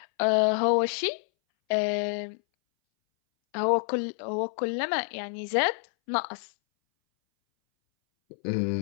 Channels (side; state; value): right; silent; 60 dB below the other